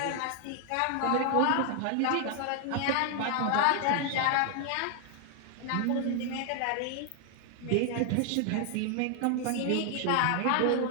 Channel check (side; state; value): both; different; correlation 0.00